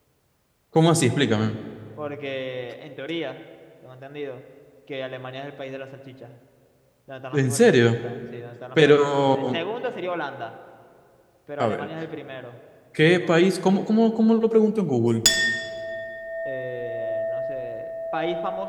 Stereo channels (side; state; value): both; identical; correlation 1.00